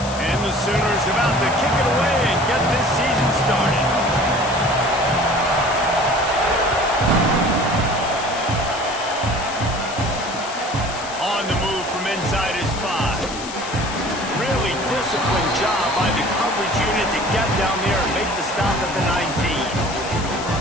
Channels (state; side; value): noise; left; hiss, 11 dB below the sound